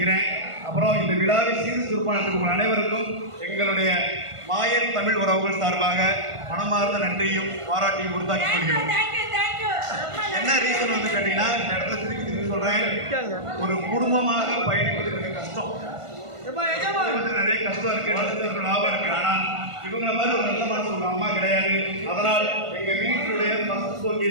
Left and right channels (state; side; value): late; left; 1.5 ms